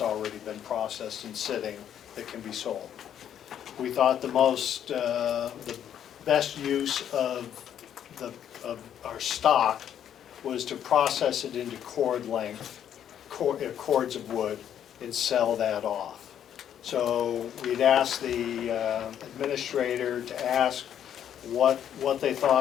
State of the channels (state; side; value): quieter; right; 9.8 dB